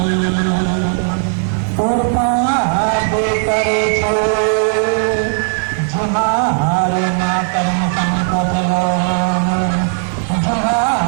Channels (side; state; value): left; silent; digital silence